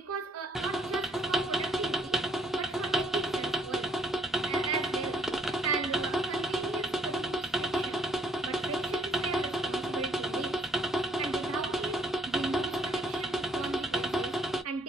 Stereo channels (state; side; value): normal; both; correlation 0.68